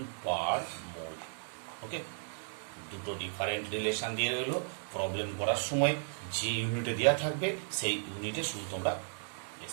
per mole. ওকে, দুটো ডিফারেন্ট রিলেশন দিয়ে রইলো, প্রবলেম করার সময় যে ইউনিটে দেওয়া থাকবে সেই ইউনিটে শুধু তোমরা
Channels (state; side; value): silent; left; digital silence